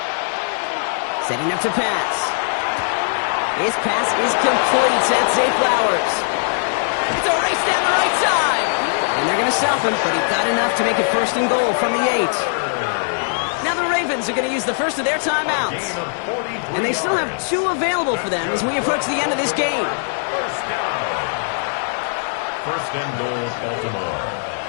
Setting up to pass. His pass is complete. That's Zay Flowers. It's a race down the right side. And they're going to stop him, but he got enough to make it 1st and goal from the 8. Now the Ravens are going to use the first of their timeouts. And they still have 2 available for them as we approach the end of this game. 1st and goal, Baltimore.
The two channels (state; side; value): silent; right; digital silence